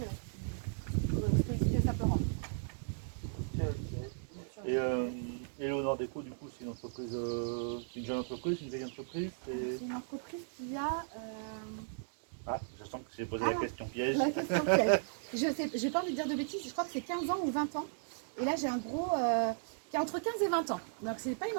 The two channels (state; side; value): silent; left; digital silence